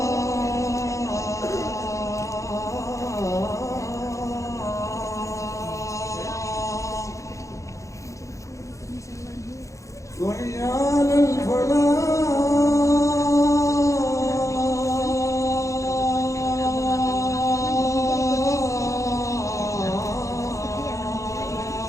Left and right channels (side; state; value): right; late; 0.15 ms